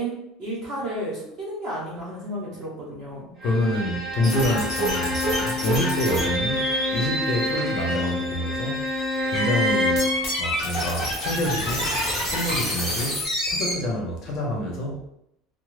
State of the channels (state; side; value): normal; both; correlation 0.46